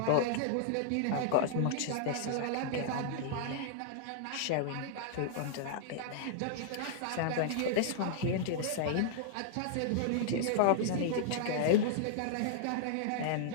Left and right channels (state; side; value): different; both; correlation -0.01